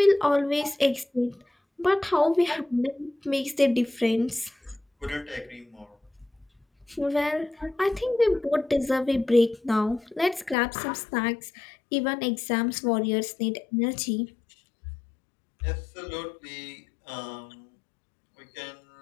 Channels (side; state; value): right; drops out; at 10.6 s